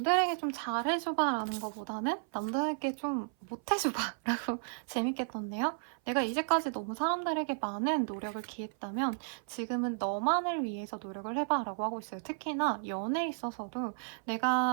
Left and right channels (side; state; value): left; silent; 55 dB below the other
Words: 좀 잘해줘봐 라는 것보다는 남들에게 좀 못해줘봐 라고 재밌게 떴네요. 내가 이제까지 너무 사람들에게 많은 노력을 기했다면 지금은 너만을 위해서 노력을 해봐 라고 하고 있어요. 특히나 연애에 있어서도